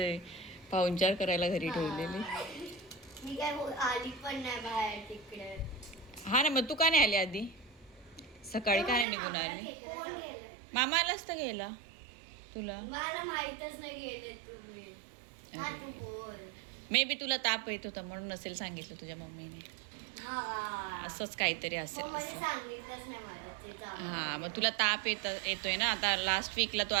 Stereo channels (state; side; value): drops out; left; at 9.1 s